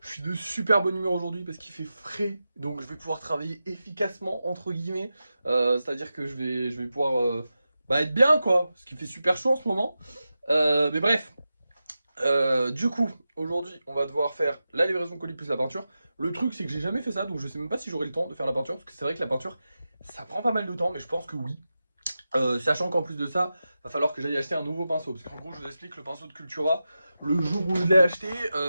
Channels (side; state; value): both; inverted; correlation -0.92